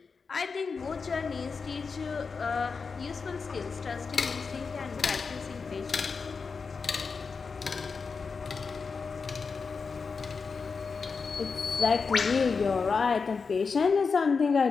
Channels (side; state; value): right; quieter; 5.0 dB